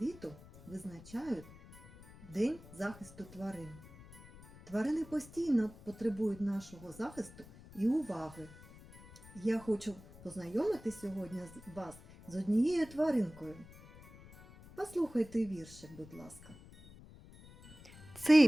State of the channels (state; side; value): noise; left; rumble, 19 dB below the sound